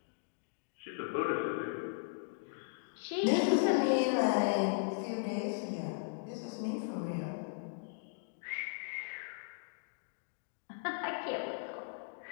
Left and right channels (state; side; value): silent; right; digital silence